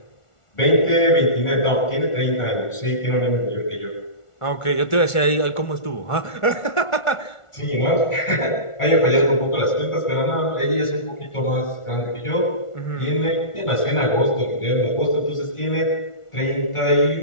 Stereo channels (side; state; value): right; late; 1.4 ms